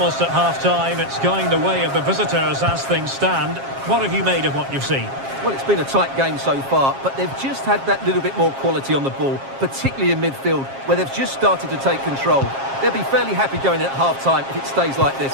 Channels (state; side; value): late; left; 7.4 ms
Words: at half-time, it's going the way of the visitors as things stand. What have you made of what you've seen? Well, it's been a tight game so far, but they've just had that little bit more quality on the ball, particularly in midfield, where they've just started to take control. They'll be fairly happy going in at half-time if it stays like